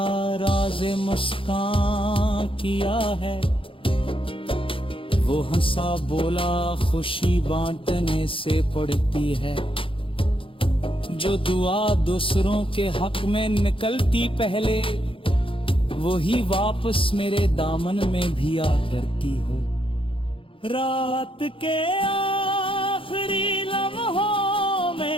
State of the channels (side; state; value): right; late; 0.26 ms